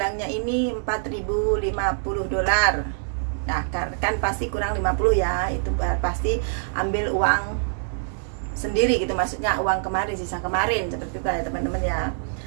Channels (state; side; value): silent; left; 62 dB below the other